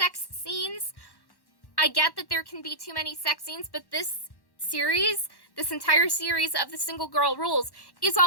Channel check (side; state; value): right; late; 1.1 ms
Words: scenes. I get that there can be too many sex scenes, but this entire series of the Single Girl Rules is